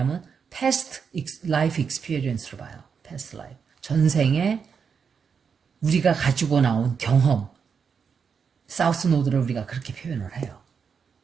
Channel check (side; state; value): left; quieter; 6.3 dB